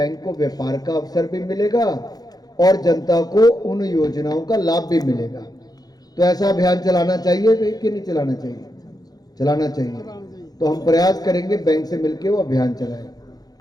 को व्यापार का अवसर भी मिलेगा और जनता को उन योजनाओं का लाभ भी मिलेगा। तो ऐसा अभियान चलाना चाहिए कि नहीं चलाना चाहिए? चलाना चाहिए। तो हम प्रयास करेंगे बैंक से मिलकर वो अभियान चलाएं।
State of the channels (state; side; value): late; right; 0.19 ms